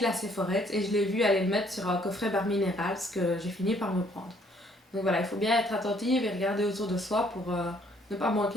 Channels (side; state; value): both; normal; correlation 0.64